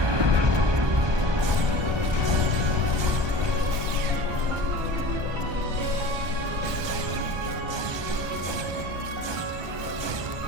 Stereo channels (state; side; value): late; left; 1.2 ms